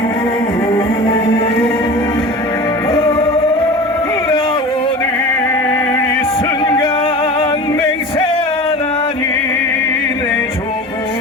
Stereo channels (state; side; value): normal; both; correlation 0.35